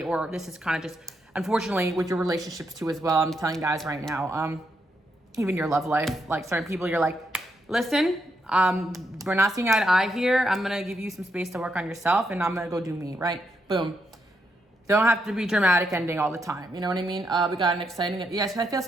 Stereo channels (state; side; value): normal; both; correlation 0.80